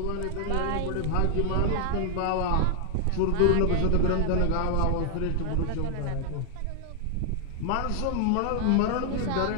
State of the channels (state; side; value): different; both; correlation -0.01